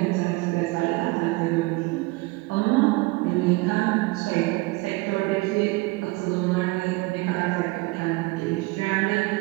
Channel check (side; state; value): left; quieter; 23.4 dB